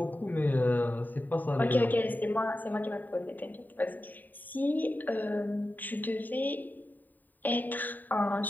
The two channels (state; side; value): late; right; 0.088 ms